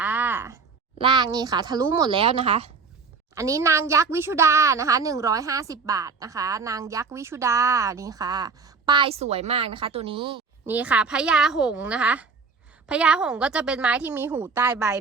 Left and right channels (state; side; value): quieter; left; 4.8 dB